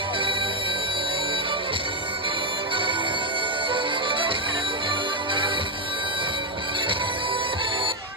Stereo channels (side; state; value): both; normal; correlation 0.05